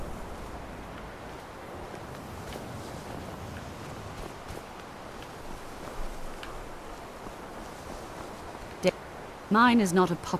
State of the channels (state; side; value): identical; both; correlation 1.00